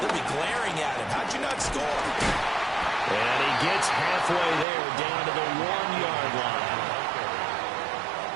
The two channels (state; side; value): drops out; left; at 4.7 s